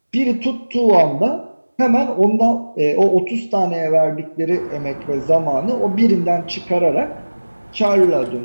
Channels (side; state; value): both; inverted; correlation -1.00